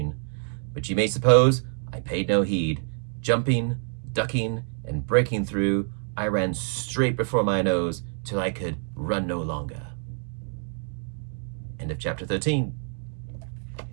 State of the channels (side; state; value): left; silent; 58 dB below the other